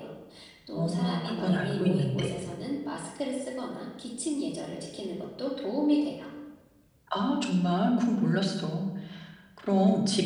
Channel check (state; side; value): identical; both; correlation 1.00